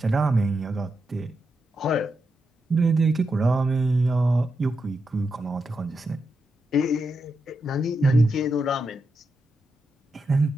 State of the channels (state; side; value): normal; both; correlation 0.85